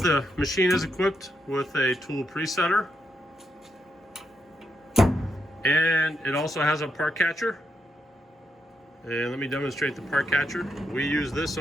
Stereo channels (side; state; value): both; normal; correlation 0.81